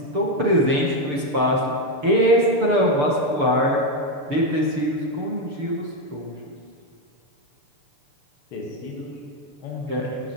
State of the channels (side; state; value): left; late; 6.8 ms